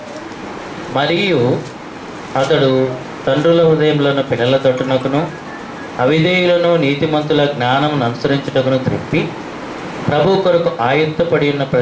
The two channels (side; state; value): both; identical; correlation 1.00